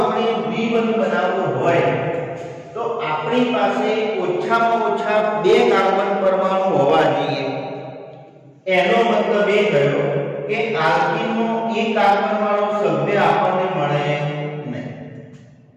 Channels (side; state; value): both; identical; correlation 1.00